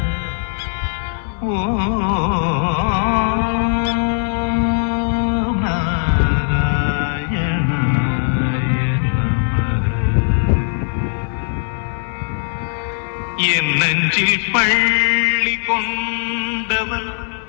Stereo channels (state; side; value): silent; right; 57 dB below the other